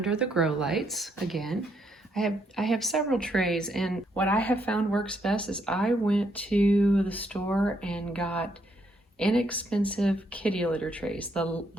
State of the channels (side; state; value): both; normal; correlation 0.74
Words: the grow lights. Again, I have several trays, and what I have found works best is I went to the store and got inexpensive kitty litter trays, the